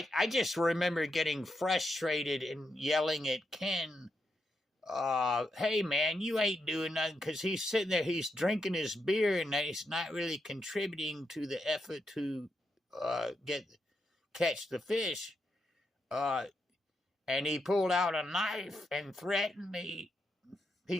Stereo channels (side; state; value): both; normal; correlation 0.83